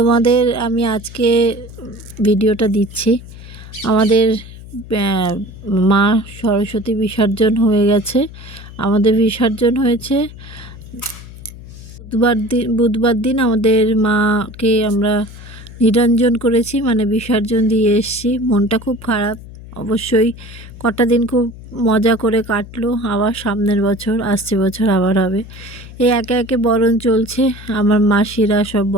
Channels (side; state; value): left; noise; hum, 16 dB below the sound